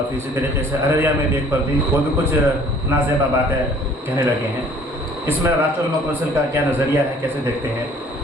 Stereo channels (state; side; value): normal; both; correlation 0.55